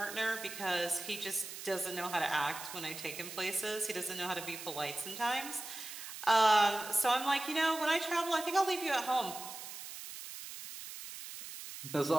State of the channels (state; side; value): noise; right; hiss, 10 dB below the sound